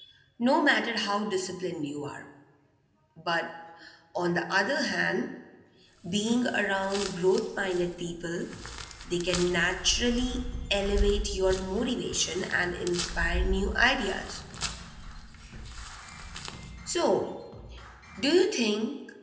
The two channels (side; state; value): both; identical; correlation 1.00